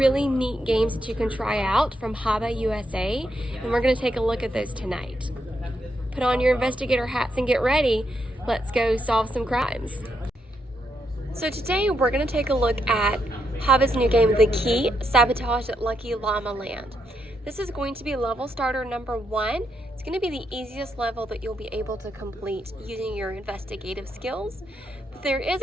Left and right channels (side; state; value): both; normal; correlation 0.80